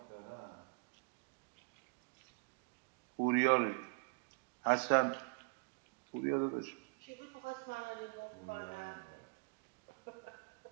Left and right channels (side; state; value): left; quieter; 34.5 dB